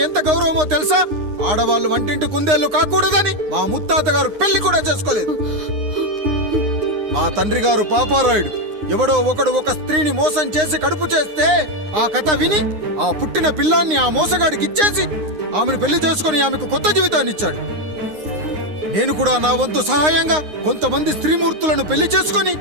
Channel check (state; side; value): late; left; 9.7 ms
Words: ఎంత గౌరవమో తెలుసా? ఆడవాళ్ళు వంటింటి కుందేళ్లు కాకూడదని మా ముత్తాత గారు పెళ్లి కూడా చేసుకోలేదు. మా తండ్రి గారు పాపారాయుడు ఎవడో ఒకడు ఒక స్త్రీని మోసం చేసి కడుపు చేస్తే ఆ కథ విని ఆ పుట్టిన పిల్లాన్ని ఆ మోసగాడికి ఇచ్చేసి ఆమెను పెళ్లి చేసుకుని ఆమెకు కొత్త జీవితాన్ని ఇచ్చాడు. నేను కూడా నా వంతు సహాయంగా కొంతమంది స్త్రీమూర్తులను పెళ్లి చేసుకుని